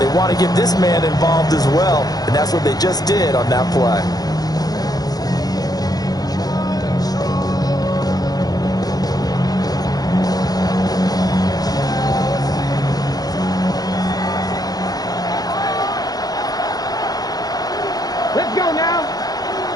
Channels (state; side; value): late; right; 0.19 ms